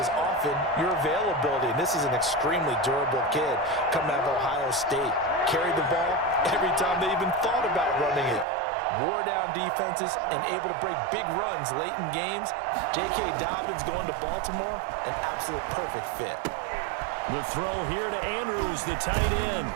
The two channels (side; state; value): left; drops out; at 8.5 s